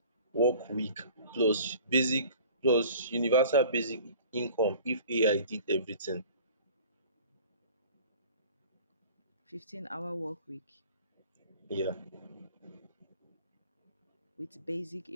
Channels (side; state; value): both; inverted; correlation -0.46